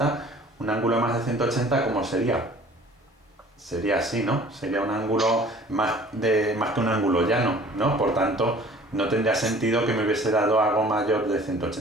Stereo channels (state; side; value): normal; both; correlation 0.50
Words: un ángulo de más de 180, ¿cómo sería? Sería así, ¿no? Sería un ángulo más que un ángulo llano, ¿no? Por tanto, no tendría sentido que me hubiese dado algo mayor de